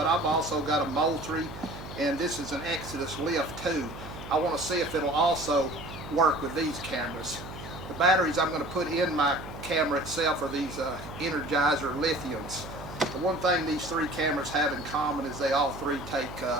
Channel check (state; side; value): noise; right; hum, 12 dB below the sound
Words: I've also got a Moultrie, and this is an Exodus Lift 2. I want to see if it'll also work with these cameras. The batteries I'm going to put in my camera itself are these Energizer lithiums. The one thing these three cameras have in common is they all three take